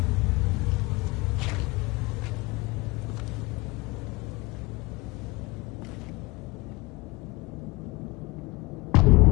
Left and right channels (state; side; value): quieter; right; 23.3 dB